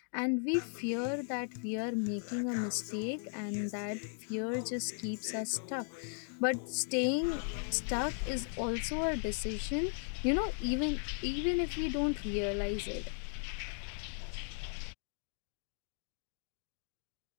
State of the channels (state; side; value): silent; right; 53 dB below the other